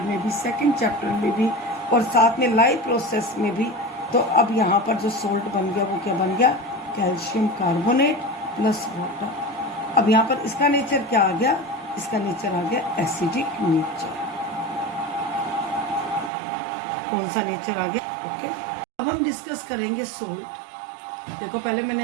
में भी, सेकंड चैप्टर में भी, और साथ में लाइव प्रोसेस में भी। तो अब यहाँ पर जो सोल्ट बन गया वो क्या बन गया, कैल्शियम कार्बोनेट प्लस वाटर। अब यहाँ पर इसका नेचर क्या आ गया, इसका नेचर आ गया एसिडिक नेचर। कौन सा नेचर आ गया, ओके। अब हम डिस्कस करेंगे सोल्ट। देखो पहले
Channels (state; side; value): drops out; left; at 16.3 s